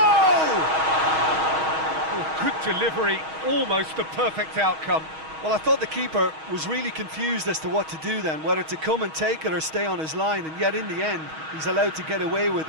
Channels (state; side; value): late; left; 6.3 ms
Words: Oh, good delivery, almost the perfect outcome. Well, I thought the keeper was really confused as to what to do then, whether to come and take it or stay on his line, and yet in the end, he's allowed to get away with